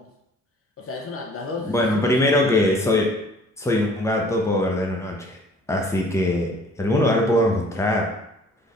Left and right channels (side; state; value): both; normal; correlation 0.54